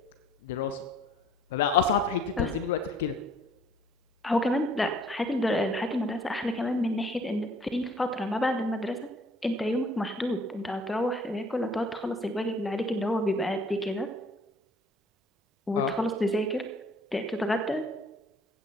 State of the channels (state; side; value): normal; both; correlation 0.58